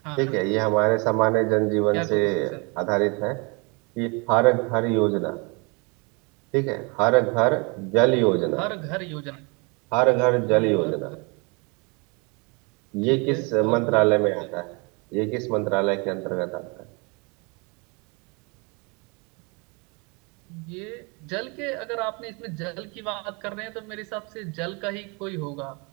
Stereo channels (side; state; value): left; quieter; 30.9 dB